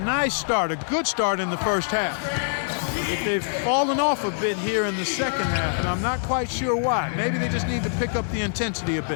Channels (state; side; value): silent; right; digital silence